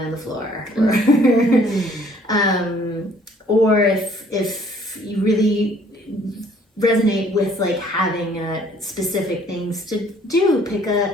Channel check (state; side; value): normal; both; correlation 0.59